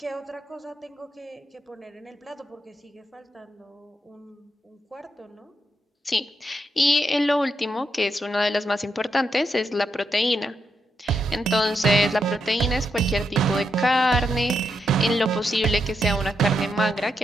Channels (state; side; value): normal; both; correlation 0.82